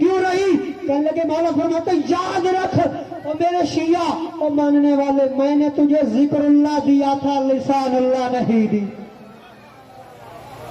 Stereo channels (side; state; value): both; identical; correlation 1.00